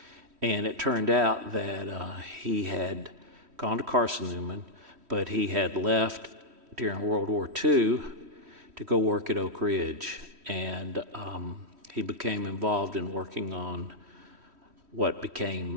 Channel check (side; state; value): left; late; 3.1 ms